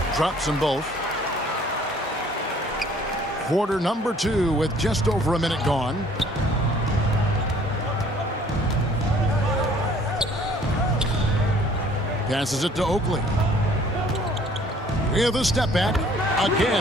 drops them both. Quarter number 2 with just over a minute gone. Passes it to Oakley. With a step back.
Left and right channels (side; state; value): both; normal; correlation 0.56